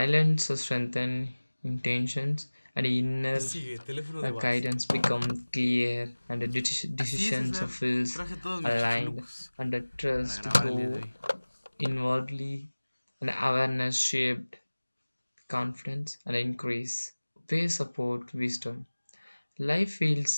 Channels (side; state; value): both; inverted; correlation -1.00